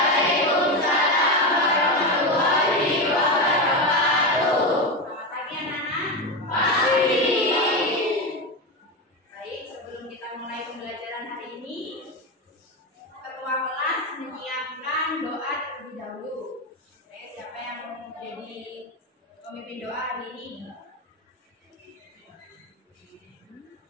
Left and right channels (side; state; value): both; normal; correlation 0.16